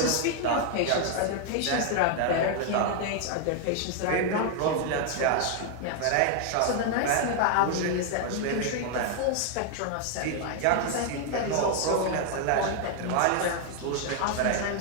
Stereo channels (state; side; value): different; both; correlation 0.00